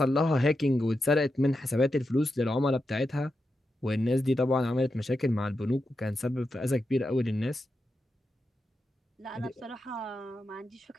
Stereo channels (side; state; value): both; normal; correlation 0.88